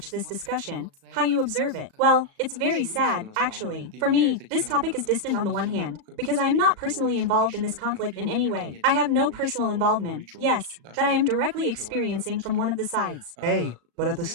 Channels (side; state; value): left; late; 37 ms